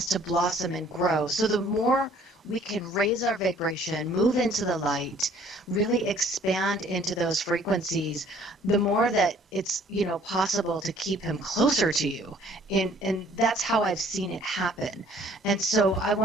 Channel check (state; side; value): normal; both; correlation 0.57